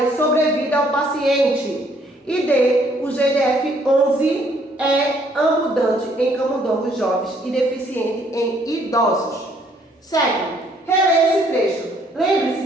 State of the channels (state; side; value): normal; both; correlation 0.65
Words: sobrevida ao paciente. E D. O GDF-11 é abundante em camundongos jovens e deficiente em idosos. Sétimo, releia esse trecho.